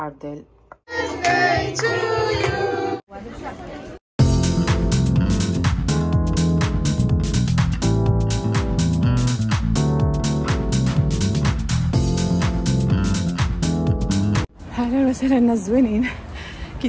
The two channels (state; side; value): identical; both; correlation 1.00